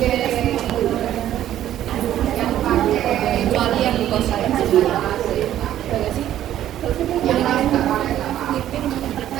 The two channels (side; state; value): left; quieter; 12.0 dB